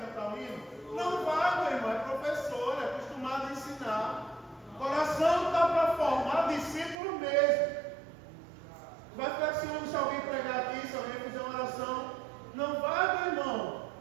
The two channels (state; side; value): drops out; left; at 7.0 s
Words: o hino. Não vai, meu irmão, é professor, é acostumado a ensinar. O coração está para formar discípulo mesmo. Vai ficar de ciúme se alguém pregar aqui, se alguém fizer uma oração. Não vai, meu irmão.